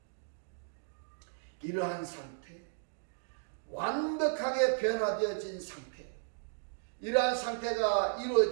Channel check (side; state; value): left; silent; digital silence